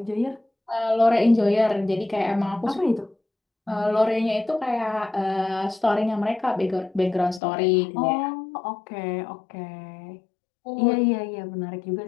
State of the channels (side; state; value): right; drops out; at 7.4 s